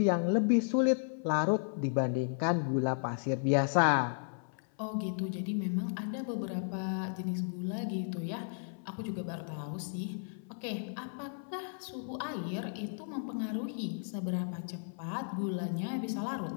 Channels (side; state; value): right; silent; 55 dB below the other